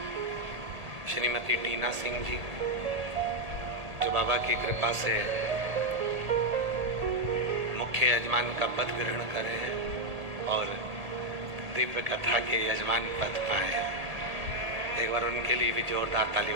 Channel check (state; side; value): late; left; 1.8 ms